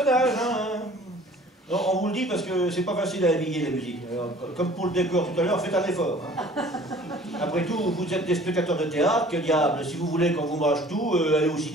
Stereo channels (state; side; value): normal; both; correlation 0.50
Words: hein. Non, on vous le dit parce que c'est pas facile à habiller la musique. Alors, comme pour le décor tout à l'heure, faites un effort. Hein. Après tout, vous êtes des spectateurs de théâtre, que diable, si vous voulez qu'on vous mâche tout, allez au